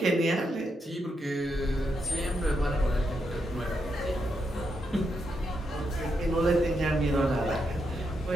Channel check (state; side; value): normal; both; correlation 0.82